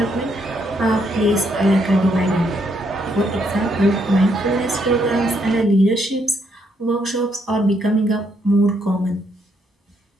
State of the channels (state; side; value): normal; both; correlation 0.74